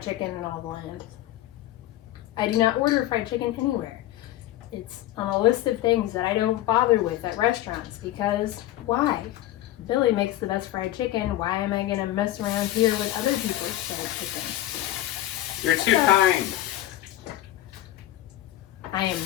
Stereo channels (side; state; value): right; quieter; 14.6 dB